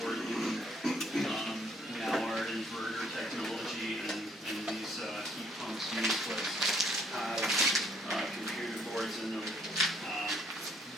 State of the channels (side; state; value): both; normal; correlation 0.66